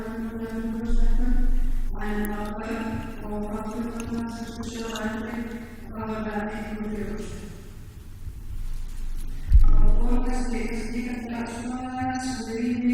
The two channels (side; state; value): both; identical; correlation 1.00